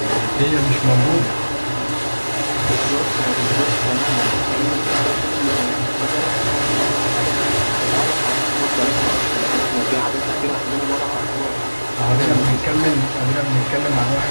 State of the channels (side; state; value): both; inverted; correlation -1.00